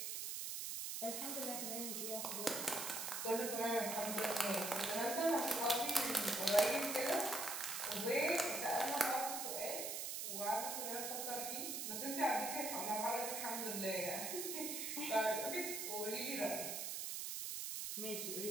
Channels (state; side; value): noise; right; hiss, 3 dB below the sound